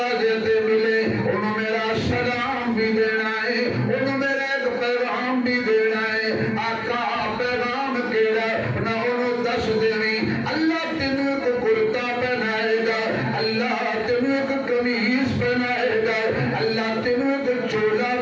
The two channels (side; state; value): both; identical; correlation 1.00